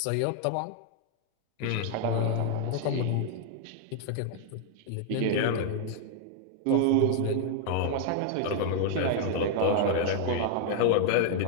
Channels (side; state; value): both; different; correlation 0.00